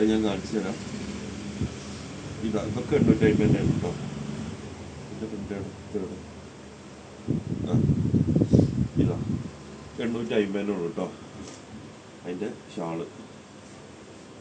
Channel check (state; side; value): identical; both; correlation 1.00